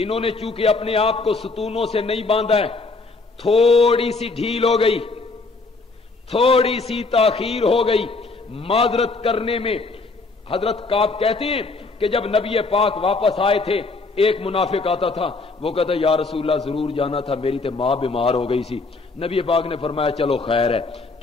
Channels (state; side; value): quieter; right; 3.8 dB